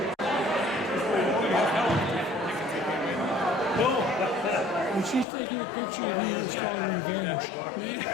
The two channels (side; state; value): right; drops out; at 5.2 s